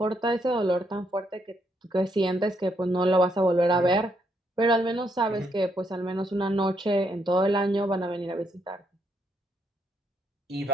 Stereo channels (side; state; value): both; normal; correlation 0.75